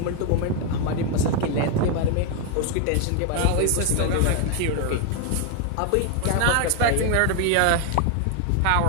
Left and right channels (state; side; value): different; both; correlation 0.01